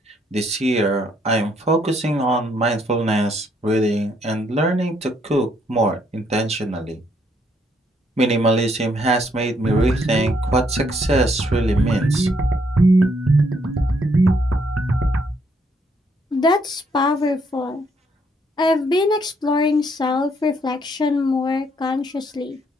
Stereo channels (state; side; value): normal; both; correlation 0.71